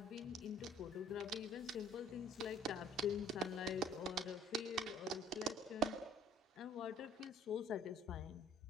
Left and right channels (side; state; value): both; normal; correlation 0.56